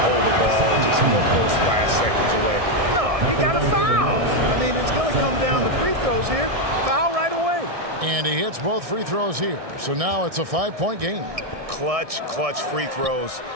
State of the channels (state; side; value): late; left; 1.6 ms